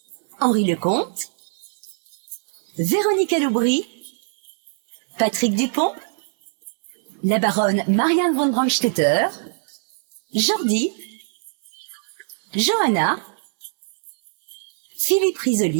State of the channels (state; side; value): silent; left; digital silence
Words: Henri Lecomte, Véronique Aloubry, Patrick Dupont, la baronne Marianne von Brandstetter, Jordi, Johanna, Philippe